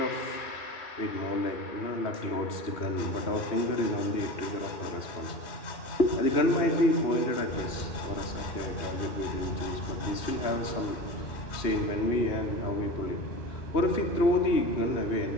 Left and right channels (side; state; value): right; late; 2.9 ms